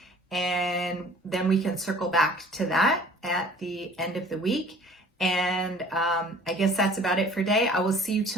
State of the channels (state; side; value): normal; both; correlation 0.50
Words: and then we can circle back to that at the end of the week. And I guess that's about it for today. I will see you